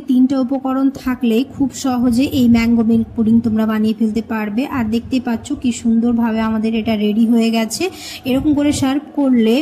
3টা উপকরণ থাকলেই খুব সহজে এই ম্যাঙ্গো মিল্ক পুডিং তোমরা বানিয়ে ফেলতে পারবে। আর দেখতে পাচ্ছ কি সুন্দরভাবে আমাদের এটা রেডি হয়ে গেছে। এরকম করে সার্ভ করলে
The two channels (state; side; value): identical; both; correlation 1.00